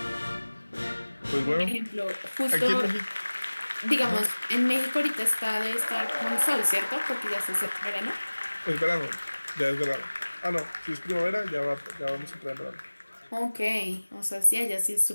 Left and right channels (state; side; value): inverted; both; correlation -1.00